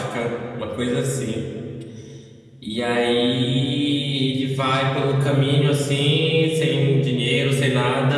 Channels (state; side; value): identical; both; correlation 1.00